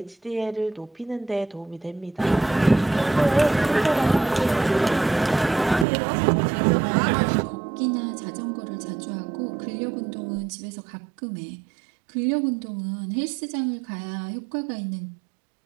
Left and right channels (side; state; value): left; drops out; at 5.9 s